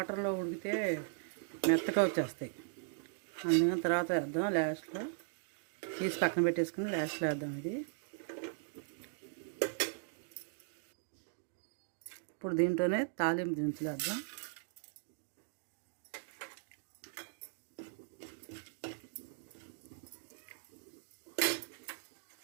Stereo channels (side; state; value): left; silent; digital silence